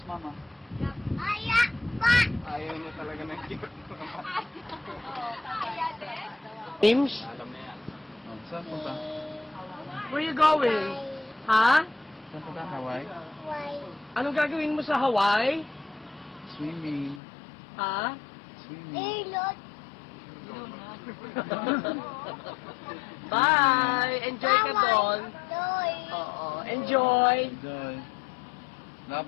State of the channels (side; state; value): right; drops out; at 17.2 s